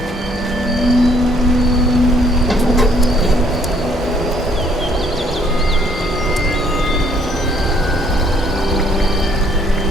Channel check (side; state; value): both; normal; correlation 0.64